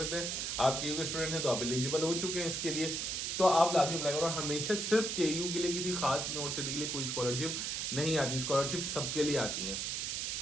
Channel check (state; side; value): noise; right; hiss, 1 dB below the sound